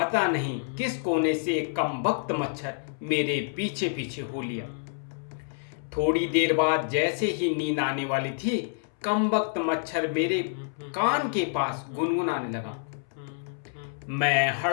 नहीं किस कोने से एक कमबख्त मच्छर मेरे पीछे पीछे हो लिया। थोड़ी देर बाद जैसे ही नींद आने वाली थी, कमबख्त मच्छर मेरे कान के पास गुनगुनाने लगा। मैं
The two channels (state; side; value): silent; right; 59 dB below the other